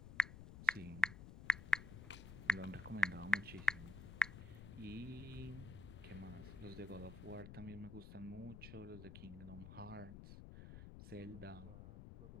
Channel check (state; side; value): noise; left; rumble, 11 dB below the sound